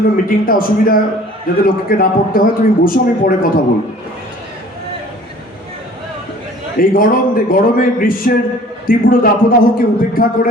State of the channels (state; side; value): normal; both; correlation 0.50